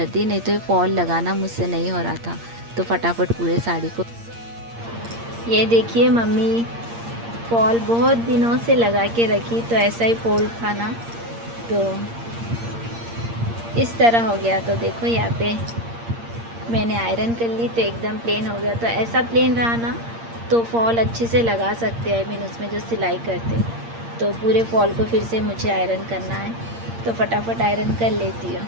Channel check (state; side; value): late; left; 8.6 ms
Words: दी। नहीं तो ये फॉल लगाना मुझसे नहीं हो रहा था। तो फटाफट पूरे साड़ी को, ये देखिए मम्मी फॉल बहुत दिनों से लगा के रखी, तो ऐसा ही फॉल था ना, तो इस तरह हो गया। तो देखो यहाँ पे मैंने आयरन कर ली तो एकदम प्लेन हो गया। तो ऐसा प्लेन रहा ना तो फॉल अच्छे से लगा सकते हैं, मीन उसमें जो सिलाई करते। तो पूरे फॉल को फिर से मुझे आयरन करना है, तो फटाफट आयरन कर लेती हूँ।